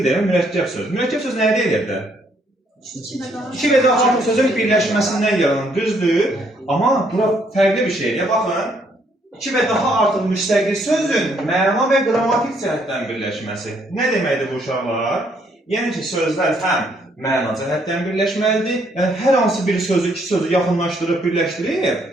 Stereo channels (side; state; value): both; normal; correlation 0.69